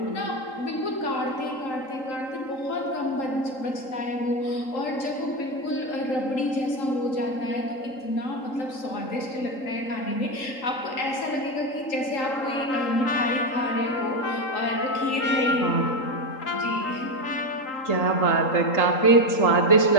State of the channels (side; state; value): right; late; 3.8 ms